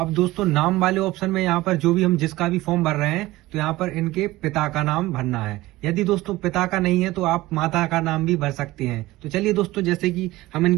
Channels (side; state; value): left; quieter; 18.2 dB